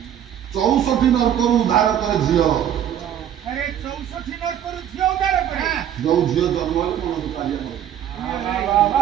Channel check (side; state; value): left; quieter; 10.2 dB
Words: 64 ନର୍କରୁ ଉଦ୍ଧାର କରେ ଝିଅ ଯୋଉ ଝିଅ ଜନ୍ମ ହେଲେ ମନ ଦୁଃଖ